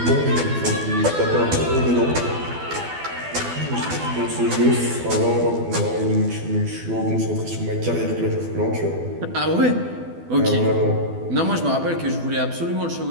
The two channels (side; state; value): left; late; 12 ms